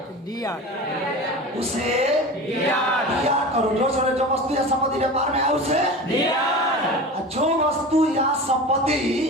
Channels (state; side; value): normal; both; correlation 0.32